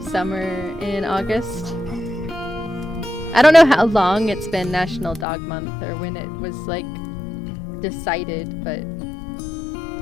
summer in August. I don't know how long it's been National Dog Month or when it was, like, decided, but...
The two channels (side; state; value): right; drops out; at 5.2 s